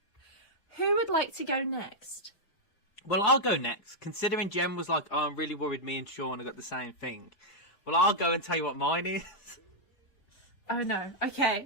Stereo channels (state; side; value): late; right; 4.8 ms